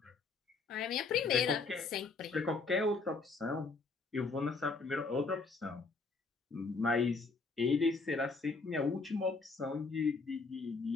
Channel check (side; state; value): right; quieter; 4.1 dB